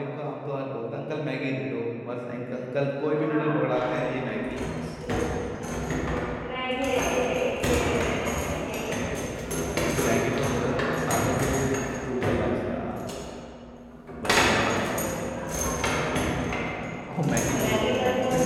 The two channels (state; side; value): identical; both; correlation 1.00